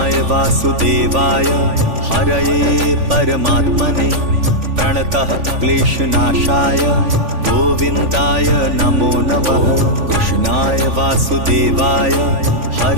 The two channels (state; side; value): late; left; 3.5 ms